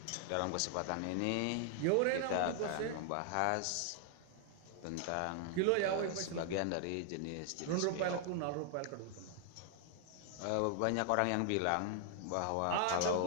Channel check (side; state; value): both; different; correlation 0.00